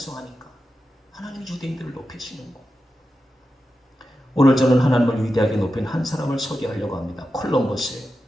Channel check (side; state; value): both; normal; correlation 0.91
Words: 하나님이 유대인들을 높이시는 거. 오늘 저는 하나님을 위대하게 높인 한 사람을 소개하려고 합니다. 콜럼버스예요.